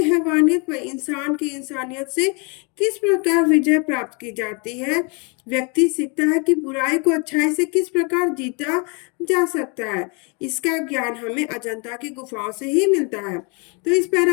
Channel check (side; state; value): right; quieter; 32.9 dB